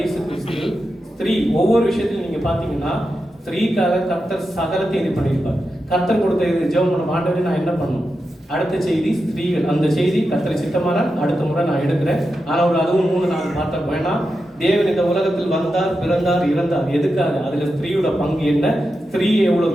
கிறிஸ்து ஸ்திரீ ஒவ்வொரு விஷயத்திலும் நீங்க பாத்தீங்கன்னா ஸ்திரீக்காக கர்த்தர் சகலத்தை இது பண்ணியிருப்பார். கர்த்தர் கொடுத்த இது ஜெபம் பண்ண ஆண்டவரே நான் என்ன பண்ணணும்? அடுத்த செய்தி ஸ்திரீகள். அந்த செய்தி கர்த்தரை சித்தமான அடுத்த முறை நான் எடுக்கிறேன். ஆனால் ஒரு அதுவும் 3-4 பார்த்தா வேணாம். தேவன் இந்த உலகத்தில் வந்தார், பிறந்தார், இறந்தார். எதுக்காக? அதுல ஸ்திரீயோட பங்கு என்ன, ஸ்திரீயை எவ்வளவு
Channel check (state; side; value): normal; both; correlation 0.89